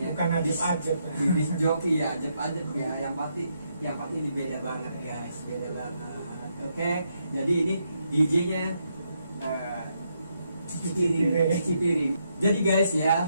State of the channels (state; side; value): inverted; both; correlation -0.78